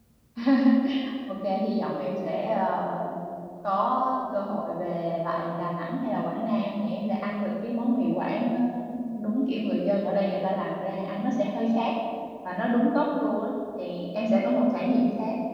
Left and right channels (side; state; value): both; identical; correlation 1.00